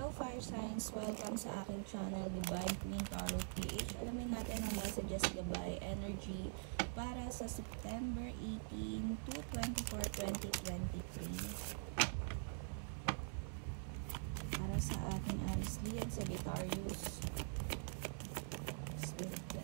Fire Signs! Welcome sa aking channel, Divine Queen Tarot PH. Alamin natin ang messages, gabay, energy para sa September 18 to 24, 2023. Para sa ating Aries Leo, Sagittarius, Spirit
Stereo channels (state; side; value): silent; left; digital silence